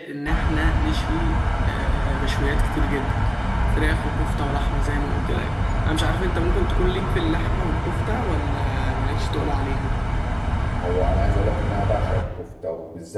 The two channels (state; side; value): identical; both; correlation 1.00